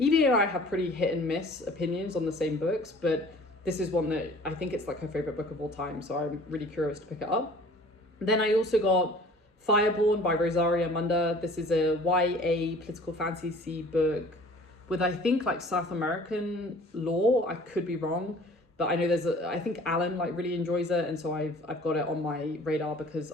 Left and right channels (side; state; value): both; normal; correlation 0.49